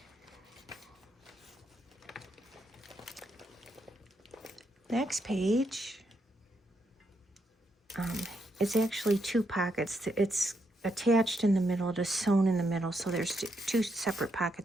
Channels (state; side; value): normal; both; correlation 0.79